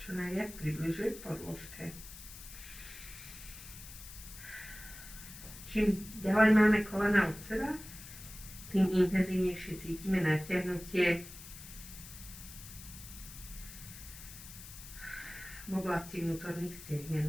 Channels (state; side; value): noise; left; hiss, 14 dB below the sound